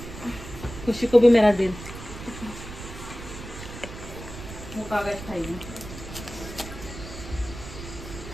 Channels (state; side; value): noise; right; rumble, 12 dB below the sound